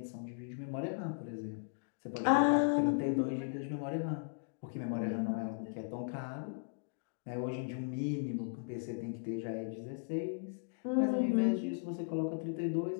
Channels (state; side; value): silent; right; digital silence